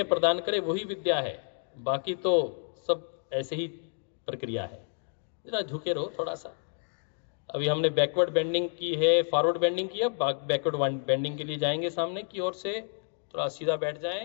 प्रदान करे वही विद्या है, बाकी तो सब ऐसे ही प्रक्रिया है। जरा झुके रहो थोड़ा सा। अभी हमने बैकवर्ड बेंडिंग की है, फॉरवर्ड बेंडिंग की है, बैकवर्ड बेंडिंग के लिए जाएंगे। सामने की ओर से थोड़ा सीधा बैठ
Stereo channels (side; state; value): right; silent; 58 dB below the other